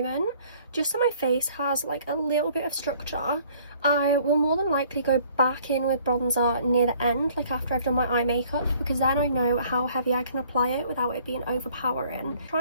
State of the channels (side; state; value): both; inverted; correlation -0.58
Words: just so my face has like a little bit of structure. I will more than likely go back in with bronzer near the end, like after I've done my eye makeup, because then I know how heavy I can apply it without it being overpowering.